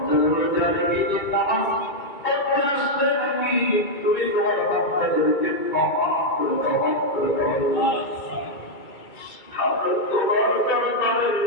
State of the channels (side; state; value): right; late; 2.3 ms